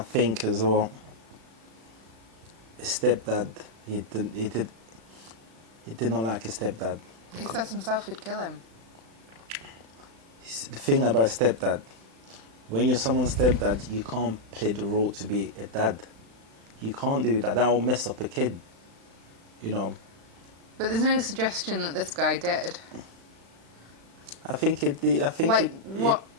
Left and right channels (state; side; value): late; left; 36 ms